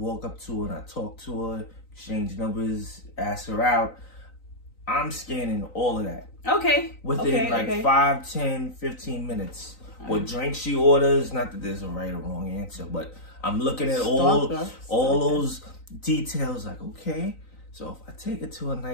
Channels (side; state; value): right; late; 3.9 ms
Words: up to her and I talk to her, exchange numbers, ask her out. I'm scanning all of that. Okay. Within 5, 10, 15 minutes. What drink she orders, not that there's a right or wrong answer, but I'm looking at all those details like, okay, so if I take her to a